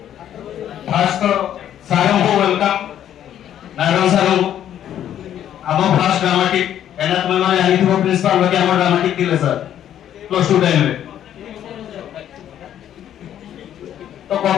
ଫାଷ୍ଟ ସାରଙ୍କୁ ୱେଲକମ୍ ନାରାୟଣ ସାରଙ୍କୁ ଆମ ଫାଷ୍ଟ ଡ୍ରାମାଟିକ ଏନା ତୁମେ ମାନେ ଜାଣିଥିବ ପ୍ରିନ୍ସିପାଲ ବାକି ଆମ ଡ୍ରାମାଟିକ ଥିଲେ ସାର୍ ପ୍ଲସ୍ 2 ଟାଇମରେ। तो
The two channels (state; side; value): quieter; right; 10.7 dB